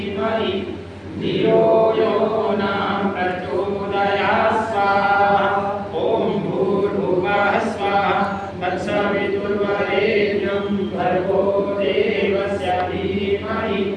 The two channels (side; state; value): both; identical; correlation 1.00